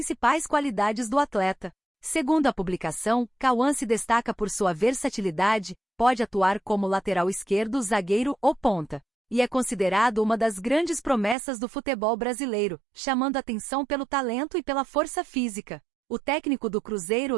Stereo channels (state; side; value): drops out; left; at 11.4 s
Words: qualidades do atleta. Segundo a publicação, Cauã se destaca por sua versatilidade, pode atuar como lateral esquerdo, zagueiro ou ponta, e é considerado uma das grandes promessas do futebol brasileiro, chamando atenção pelo talento e pela força física. O técnico do Cruzeiro,